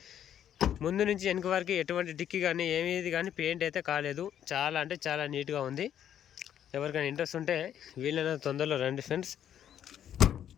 ముందు నుంచి వెనక వరకు ఎటువంటి డిక్కీ కానీ ఏమేది కానీ పెయింట్ అయితే కాలేదు, చాలా అంటే చాలా నీట్గా ఉంది. ఎవరికైనా ఇంట్రెస్ట్ ఉంటే వీలైనంత తొందరలో రండి ఫ్రెండ్స్.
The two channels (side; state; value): right; quieter; 10.0 dB